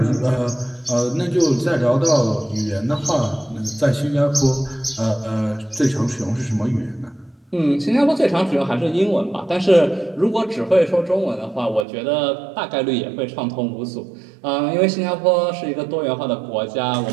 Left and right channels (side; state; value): left; drops out; at 11.9 s